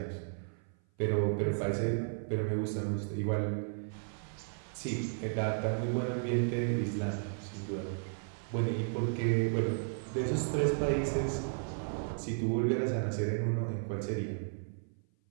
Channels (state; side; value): silent; left; 55 dB below the other